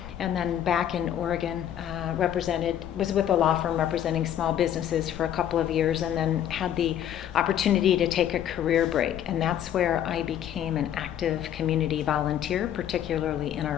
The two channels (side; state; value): right; quieter; 10.4 dB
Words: and then back in Oregon, was with a law firm representing small businesses for a couple of years, and then had the opportunity to take a career break. And that's where I became an active community volunteer, particularly in our